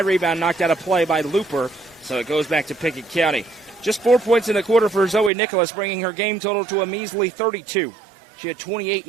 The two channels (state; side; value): drops out; left; at 5.3 s